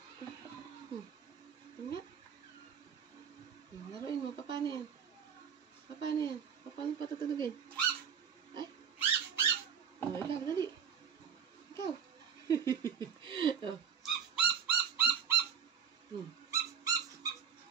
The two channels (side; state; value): left; quieter; 7.5 dB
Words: Nga. Laruin mo. Paano yan? Paano yan? Paano patutulugin? Ay. Oh, ikaw. Dali. Ikaw. Oh.